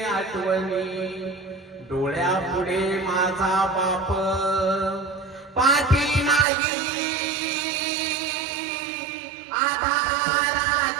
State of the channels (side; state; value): left; drops out; at 6.5 s